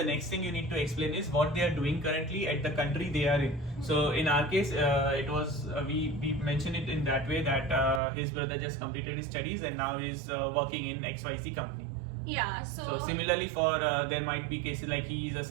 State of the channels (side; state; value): left; drops out; at 8.0 s